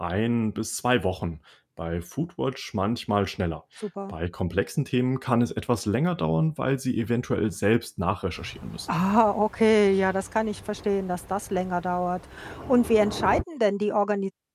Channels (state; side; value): identical; both; correlation 1.00